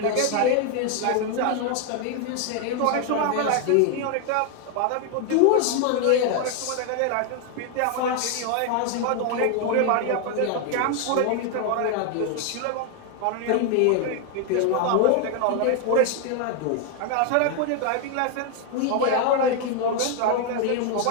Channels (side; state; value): both; different; correlation 0.00